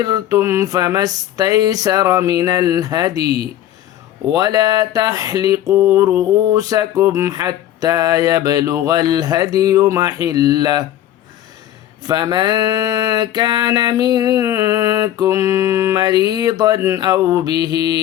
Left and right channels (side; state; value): right; quieter; 12.3 dB